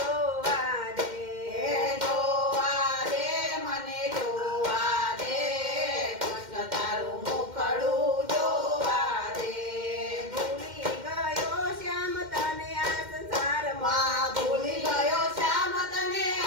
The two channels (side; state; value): left; late; 2.1 ms